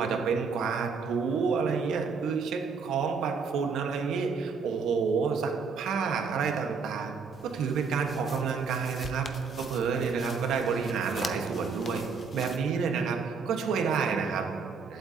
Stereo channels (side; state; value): left; quieter; 5.2 dB